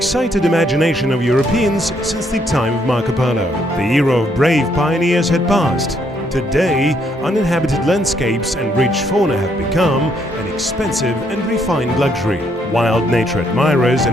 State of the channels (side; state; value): both; normal; correlation 0.72